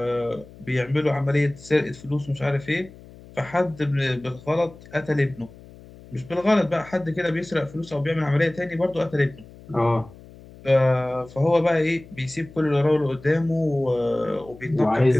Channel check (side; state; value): left; noise; hum, 20 dB below the sound